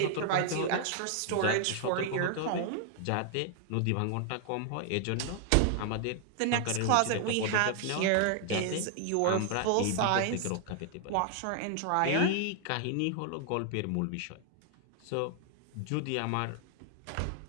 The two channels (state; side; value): different; both; correlation 0.00